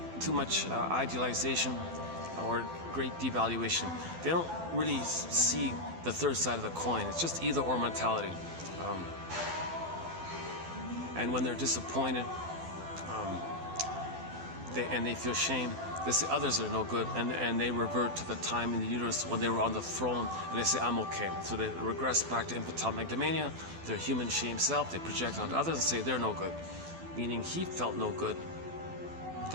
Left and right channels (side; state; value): left; late; 12 ms